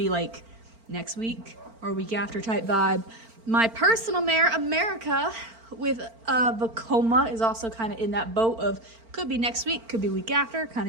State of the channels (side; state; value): left; late; 4.4 ms